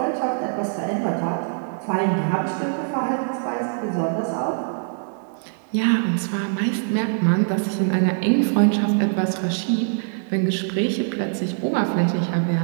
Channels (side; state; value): left; silent; digital silence